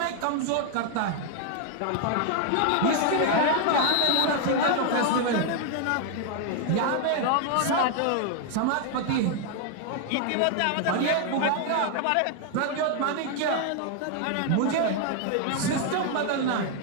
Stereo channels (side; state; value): both; different; correlation 0.00